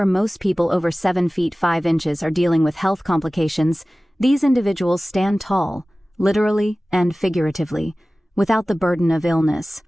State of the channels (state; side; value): normal; both; correlation 0.97